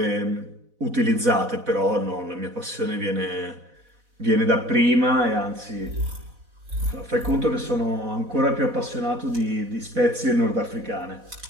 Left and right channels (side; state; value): left; late; 4.1 ms